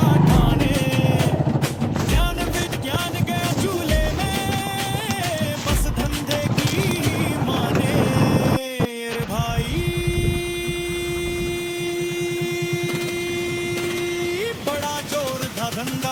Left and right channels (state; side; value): identical; both; correlation 1.00